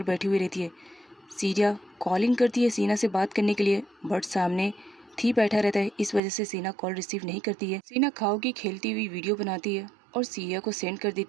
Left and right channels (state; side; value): drops out; left; at 6.2 s